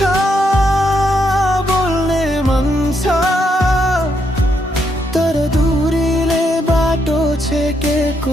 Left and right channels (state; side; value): normal; both; correlation 0.78